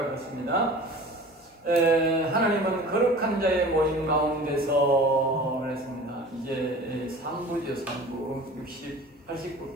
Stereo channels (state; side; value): normal; both; correlation 0.40